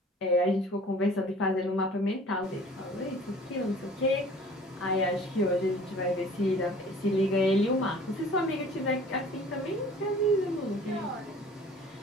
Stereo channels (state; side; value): normal; both; correlation 0.49